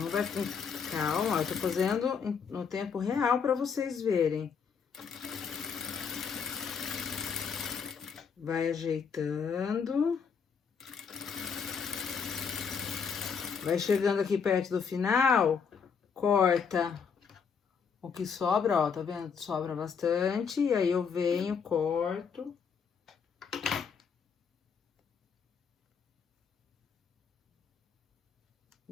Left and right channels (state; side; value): quieter; right; 6.3 dB